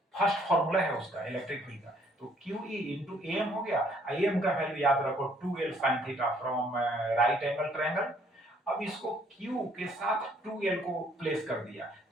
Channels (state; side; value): normal; both; correlation 0.64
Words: first formula है उसका इलेक्ट्रिक फील्ड का। तो क्यू ई इंटू एम हो गया, एम का वैल्यू याद रखो 2l sine theta from right angle triangle. अब इसको Q के साथ 2l को प्लेस कर दिया,